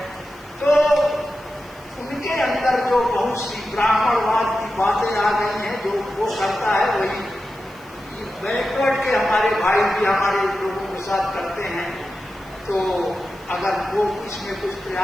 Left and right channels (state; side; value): noise; left; hiss, 28 dB below the sound